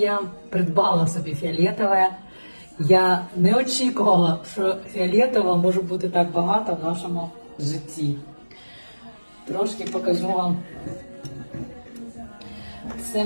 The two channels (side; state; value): both; inverted; correlation -1.00